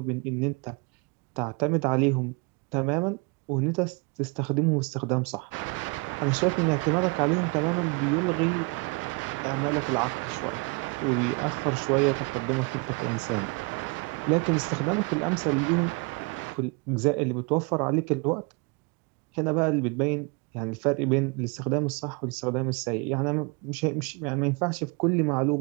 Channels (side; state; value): left; quieter; 29.7 dB